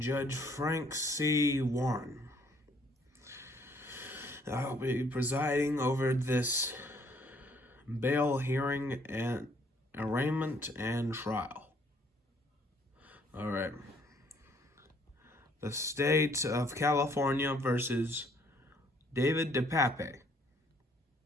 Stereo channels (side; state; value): both; normal; correlation 0.64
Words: Judge Frank C. Warren. I'll be presiding over this bail hearing and arraignment and trial. Alright. The State of California versus David DePape.